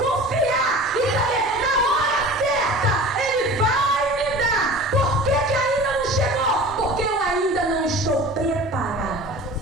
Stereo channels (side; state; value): both; normal; correlation 0.39